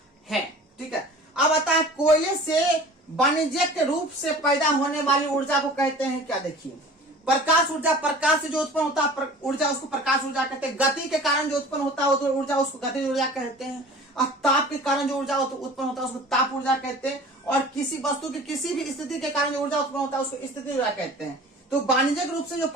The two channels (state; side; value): normal; both; correlation 0.43